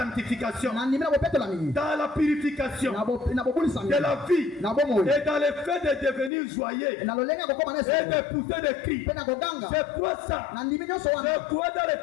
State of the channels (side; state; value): right; drops out; at 6.3 s